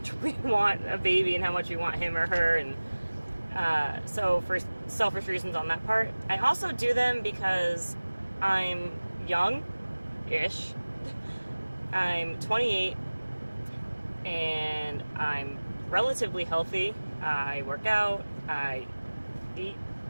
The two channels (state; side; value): inverted; both; correlation -1.00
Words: we want a baby and how much we want him or her. And so for selfish reasons on that part. I also do them because I'm young-ish. I'm 28 and I'm relatively healthy. I work out, I eat